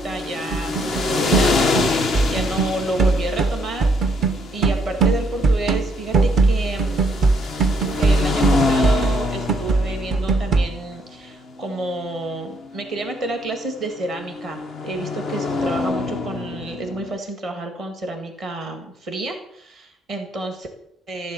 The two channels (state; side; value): normal; both; correlation 0.70